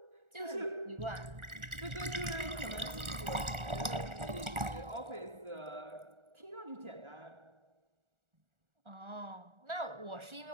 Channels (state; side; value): late; left; 1.4 ms